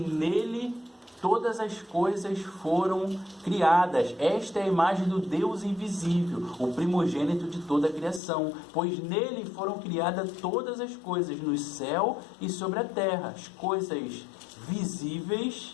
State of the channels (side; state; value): right; drops out; at 8.2 s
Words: todas as coisas foram criadas. Esta é a imagem do Deus invisível, o primogênito de toda a criação, pois nele foram criadas todas as coisas no céu e sobre a terra, as coisas